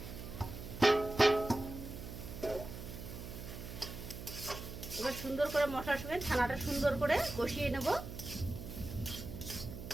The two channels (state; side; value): noise; right; hum, 9 dB below the sound